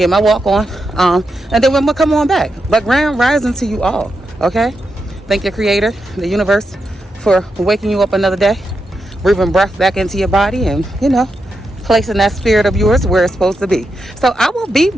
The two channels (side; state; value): both; normal; correlation 0.86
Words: my walk on, and then we're gonna come on back. But grand rising to you all, okay? Thank your creator, the universe, for waking you up another day, breathing breath back into your body, and placing that spirit of yours where it's supposed to be. So I will be